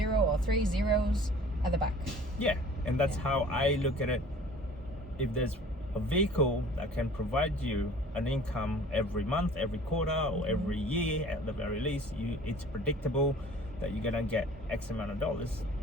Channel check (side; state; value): both; normal; correlation 0.48